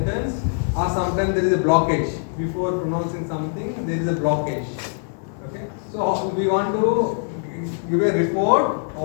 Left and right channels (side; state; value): right; silent; 64 dB below the other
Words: or sometimes there is a blockage before pronouncing something. There is a blockage. Okay, so we want to give a report